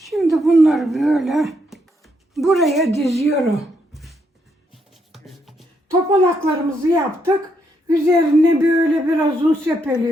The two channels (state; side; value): normal; both; correlation 0.76